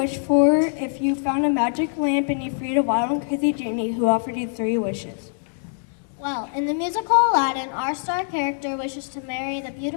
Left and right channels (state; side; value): silent; right; digital silence